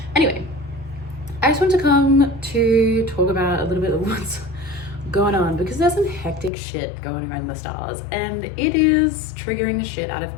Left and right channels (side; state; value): right; drops out; at 6.5 s